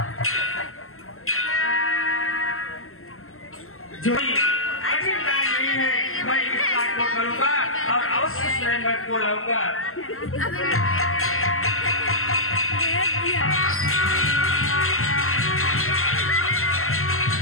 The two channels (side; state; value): right; late; 0.62 ms